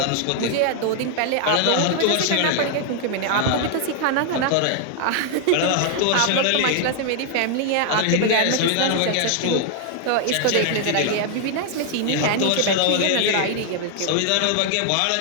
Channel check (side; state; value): both; different; correlation 0.00